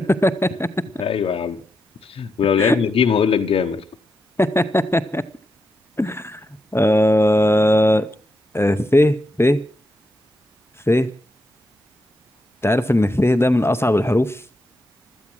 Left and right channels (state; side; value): normal; both; correlation 0.84